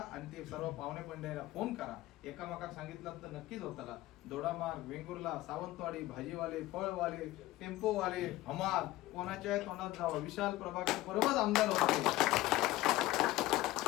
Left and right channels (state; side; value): quieter; right; 17.1 dB